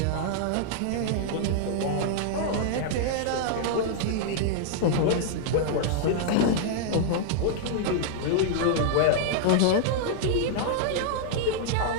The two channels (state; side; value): different; both; correlation -0.01